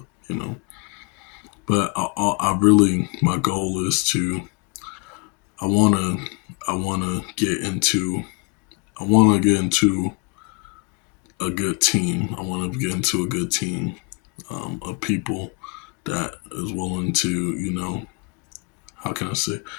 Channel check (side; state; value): right; quieter; 32.1 dB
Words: But I really, my goal is to I wanna I wanna get into I wanna get into a good team. I wanna get into a good team of people that is willing to, how can I say,